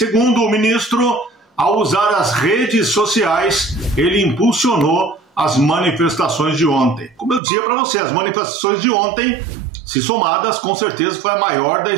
o ministro, ao usar as redes sociais, ele impulsionou as manifestações de ontem. Como eu dizia para você, as manifestações de ontem, se somadas, com certeza foi a maior da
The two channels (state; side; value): drops out; left; at 7.4 s